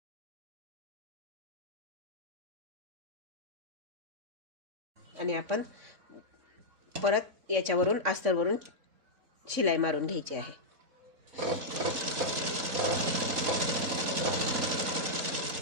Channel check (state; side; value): late; left; 4.0 ms